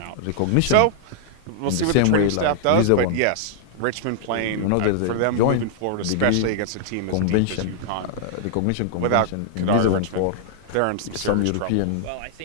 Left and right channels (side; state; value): both; different; correlation -0.01